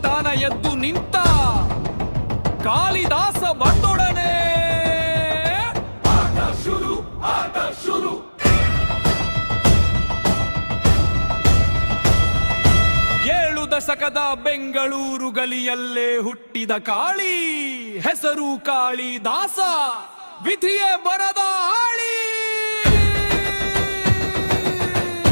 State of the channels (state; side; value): inverted; both; correlation -1.00